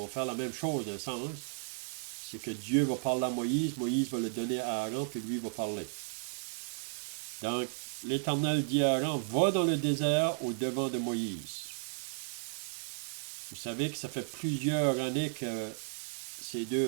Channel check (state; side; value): silent; left; digital silence